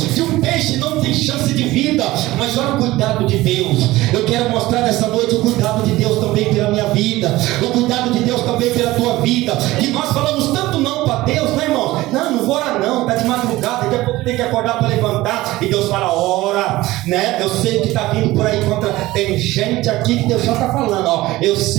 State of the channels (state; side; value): quieter; left; 18.0 dB